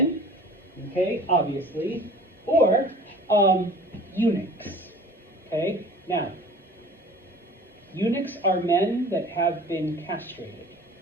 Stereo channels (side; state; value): both; normal; correlation 0.44